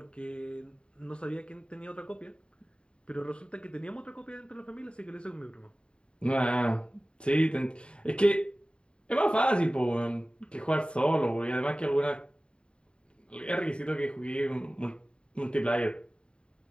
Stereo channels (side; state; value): right; late; 0.053 ms